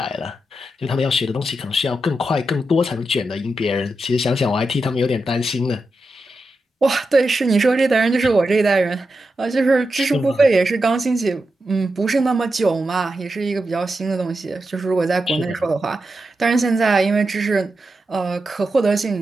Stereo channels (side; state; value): both; normal; correlation 0.88